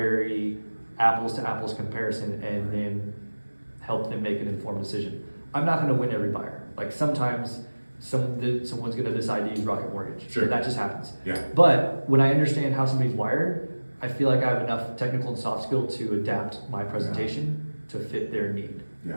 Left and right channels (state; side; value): inverted; both; correlation -1.00